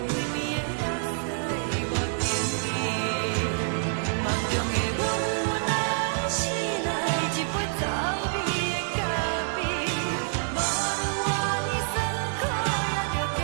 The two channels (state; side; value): silent; left; digital silence